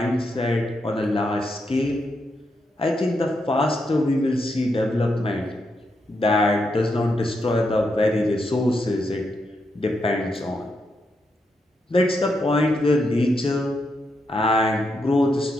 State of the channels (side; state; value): both; normal; correlation 0.82